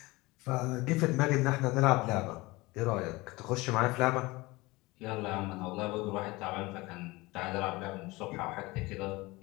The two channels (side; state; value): right; quieter; 22.0 dB